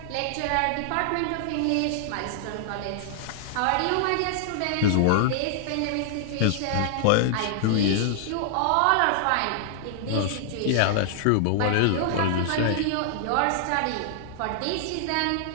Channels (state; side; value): different; both; correlation -0.01